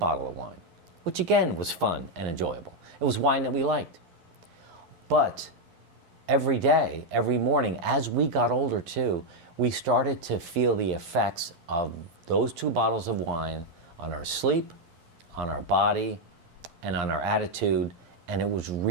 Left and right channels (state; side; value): late; left; 11 ms